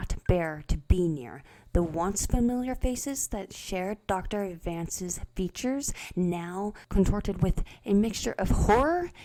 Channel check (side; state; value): both; identical; correlation 1.00